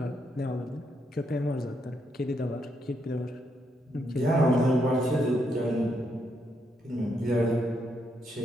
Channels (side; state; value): both; normal; correlation 0.78